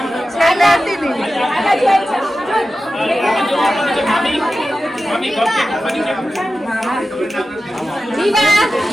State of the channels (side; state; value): both; normal; correlation 0.93